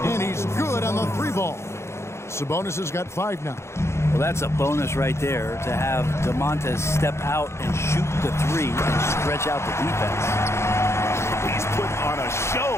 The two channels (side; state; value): right; late; 0.13 ms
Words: and he's good on the 3-ball. Sabonis has got 5 now. Well, that's a bonus right there to have DeMontes step out and shoot the 3 and stretch out the defense. He's putting on a